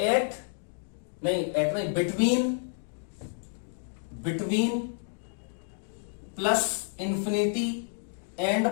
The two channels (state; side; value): silent; right; digital silence